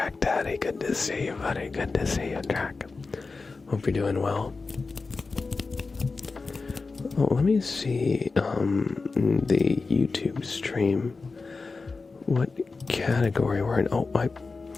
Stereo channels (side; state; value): right; quieter; 4.1 dB